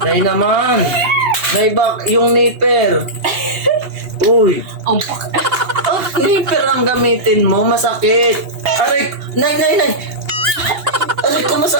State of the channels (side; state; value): left; late; 2.8 ms